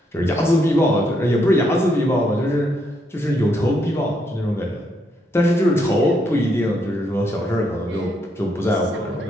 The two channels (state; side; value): normal; both; correlation 0.76